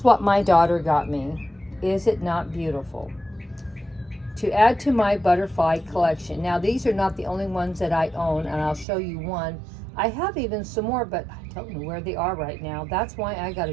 what my daughter got me. Is it not beautiful? To add to my butterfly collection. Now, these are not the only ones that I own, and I'll show you one. I have even some more, but I don't know where they are right now. That's why I got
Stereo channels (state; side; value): drops out; left; at 8.8 s